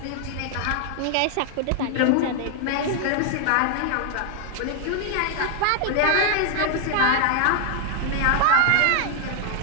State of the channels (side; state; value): both; different; correlation 0.00